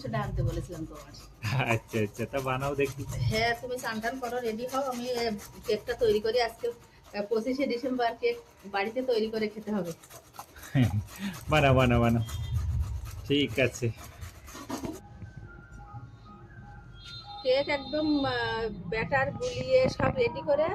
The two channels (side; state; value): both; identical; correlation 1.00